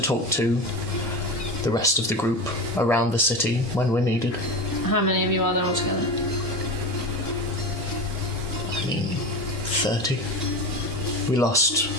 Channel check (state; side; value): normal; both; correlation 0.25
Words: talk to the rest of the group around the city when we're needed. How many of you are there altogether? I mean, 30. We lost